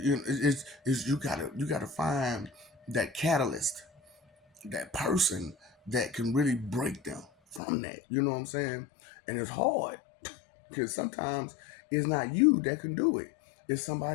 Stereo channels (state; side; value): drops out; right; at 7.6 s